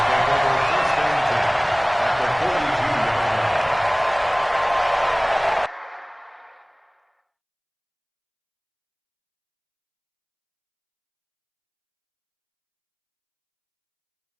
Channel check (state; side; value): identical; both; correlation 1.00